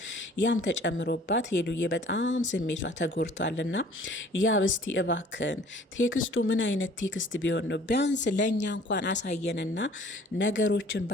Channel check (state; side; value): normal; both; correlation 0.53